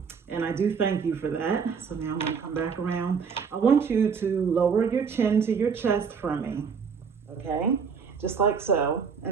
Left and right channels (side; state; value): left; quieter; 6.1 dB